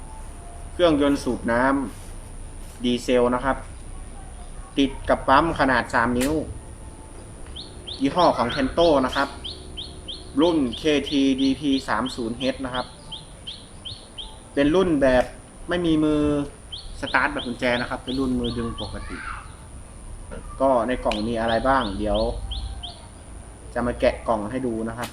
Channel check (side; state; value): both; identical; correlation 1.00